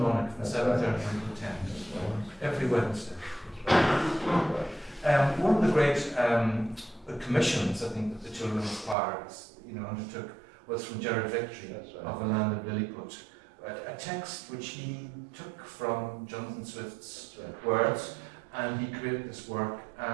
from 7:30 until 10. Every Wednesday. One of the great commissions, I think, that the children's choir undertook was from Gerard Victory of A Land of Lilliput, a text which he took from Jonathan Swift's words, and he created this work,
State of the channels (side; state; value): left; drops out; at 9.0 s